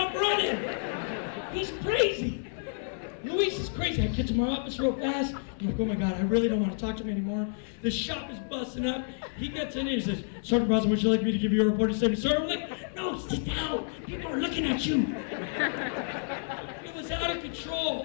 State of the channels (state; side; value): silent; right; 58 dB below the other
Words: running. He's crazy. Luis is crazy. I get to my office real fast. I'm like, oh my God, I really don't want to talk to him anymore. The shop is busting up. He gets in here and says, "Sergeant Barraza, would you like me to give you a report?" He said, "Sir," I'm like, "No, sit down. People are looking at you." It was out of